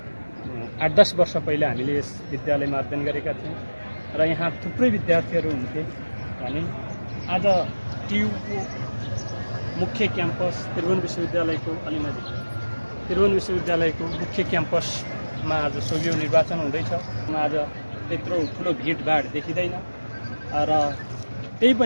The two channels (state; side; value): inverted; both; correlation -1.00